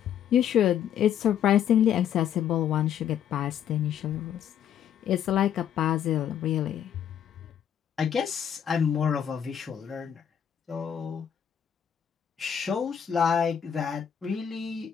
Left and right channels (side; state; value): right; quieter; 9.1 dB